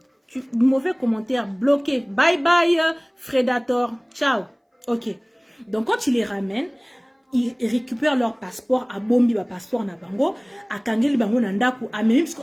Mauvais commentaire, bloqué. Bye bye, Fredator. Ciao. Ok. Donc, quand il les ramène, ils récupèrent leur passeport à Bombi, ba passeport na bango, à Kangeli bango nandaku, à même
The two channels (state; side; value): identical; both; correlation 1.00